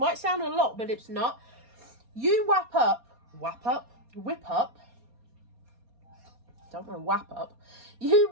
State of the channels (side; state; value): left; late; 4.2 ms